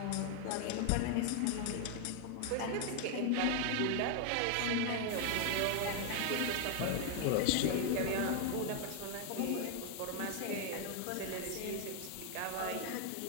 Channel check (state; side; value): different; both; correlation 0.00